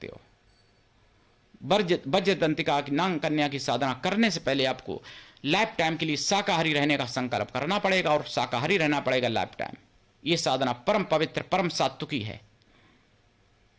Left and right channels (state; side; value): identical; both; correlation 1.00